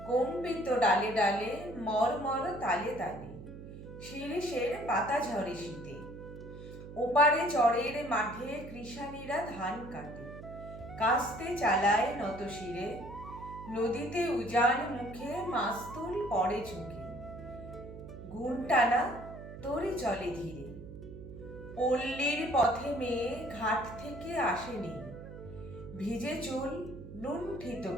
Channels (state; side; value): noise; right; hum, 13 dB below the sound